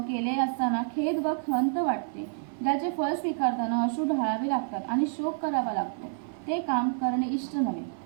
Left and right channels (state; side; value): silent; left; 58 dB below the other